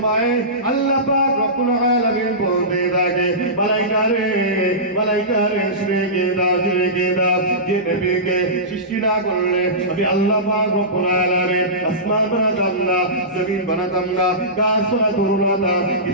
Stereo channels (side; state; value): both; normal; correlation -0.20